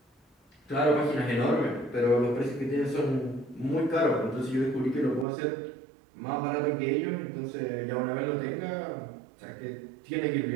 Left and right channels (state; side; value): drops out; left; at 5.2 s